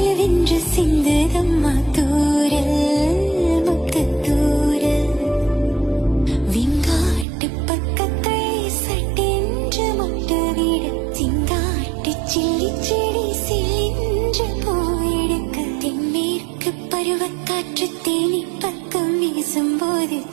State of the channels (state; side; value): drops out; left; at 7.2 s